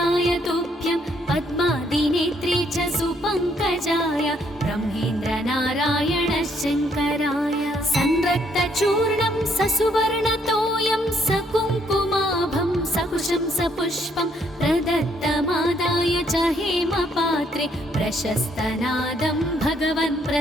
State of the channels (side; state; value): both; normal; correlation 0.69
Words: तुभ्यं पद्मादिनेत्रे च सुपङ्कजाय ब्रह्मेन्द्रनारायण शङ्कराय संरक्तचूर्णं ससुवर्णतोयं सकुङ्कुमाभं सकुशं सपुष्पं प्रदत्तमादाय च हेमपात्रे प्रशस्तनादं भगवन्